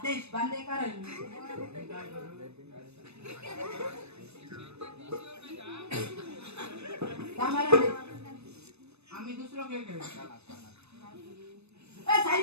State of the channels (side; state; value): left; late; 0.80 ms